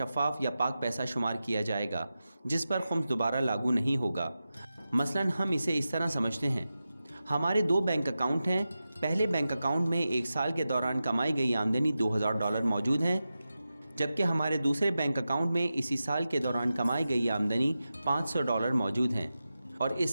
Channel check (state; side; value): inverted; both; correlation -0.92